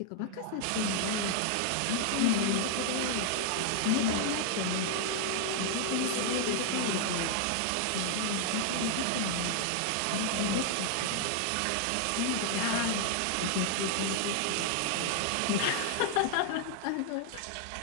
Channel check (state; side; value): different; both; correlation 0.00